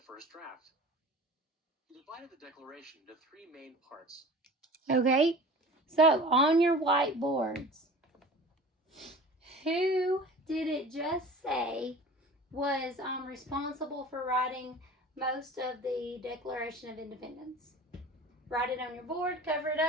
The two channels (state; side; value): normal; both; correlation 0.40